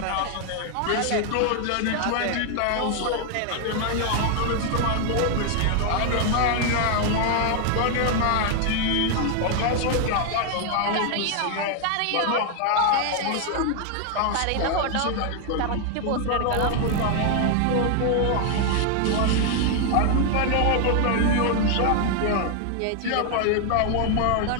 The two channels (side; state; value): both; different; correlation 0.00